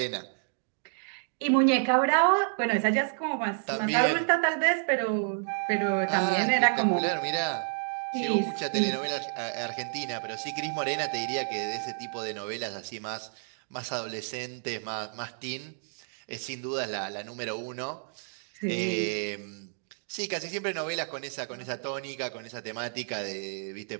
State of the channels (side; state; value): left; silent; digital silence